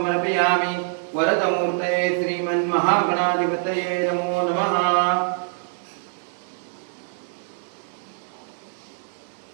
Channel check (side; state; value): left; silent; 62 dB below the other